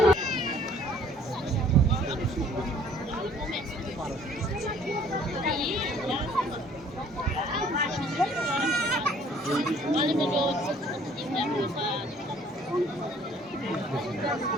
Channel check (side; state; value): both; normal; correlation 0.57